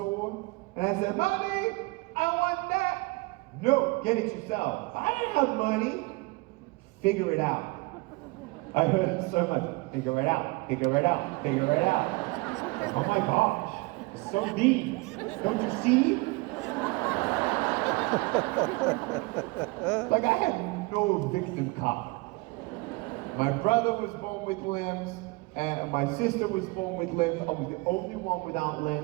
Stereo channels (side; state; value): left; quieter; 25.2 dB